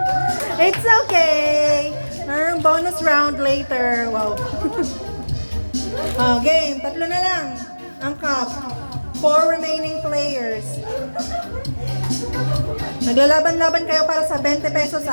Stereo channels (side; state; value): both; inverted; correlation -1.00